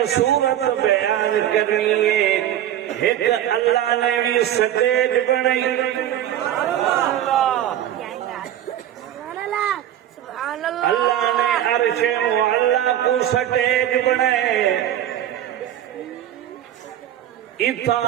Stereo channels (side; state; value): left; quieter; 11.6 dB